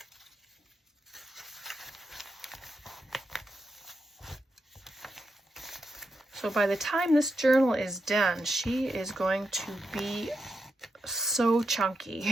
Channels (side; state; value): both; normal; correlation 0.85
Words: So by the time this journal is done, she is going to be so